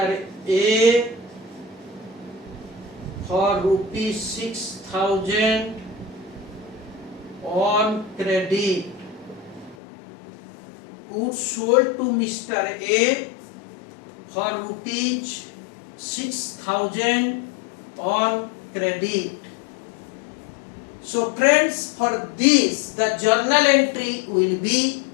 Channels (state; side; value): drops out; right; at 9.8 s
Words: A for rupees 6,000 on credit. Goods sold to Mr. A for rupees 6,000 on credit. So friends, for this the journal entry will be